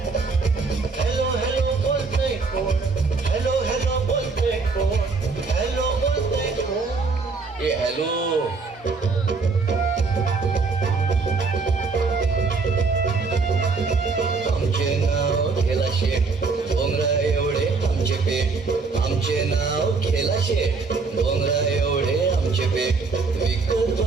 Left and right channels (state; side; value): quieter; left; 4.3 dB